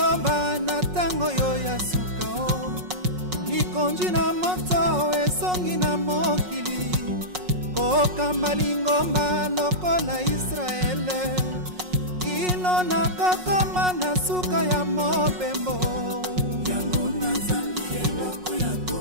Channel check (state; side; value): late; left; 5.5 ms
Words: na ntango yo ya suka o likonzi na moto esongi na mokili kokamba lingomba lokola Israele kino na kokoma na suka ya mobembo yango nazangi eloko ya